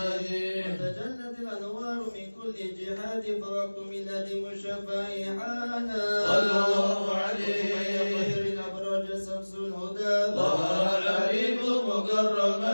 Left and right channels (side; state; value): both; inverted; correlation -1.00